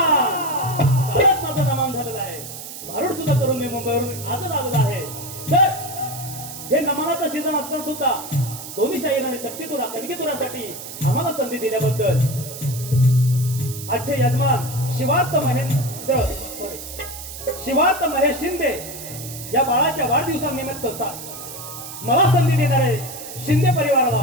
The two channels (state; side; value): noise; right; hiss, 11 dB below the sound